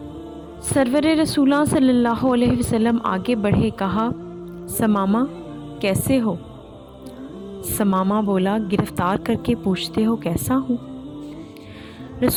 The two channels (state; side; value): identical; both; correlation 1.00